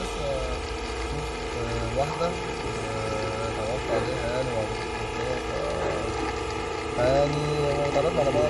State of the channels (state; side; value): identical; both; correlation 1.00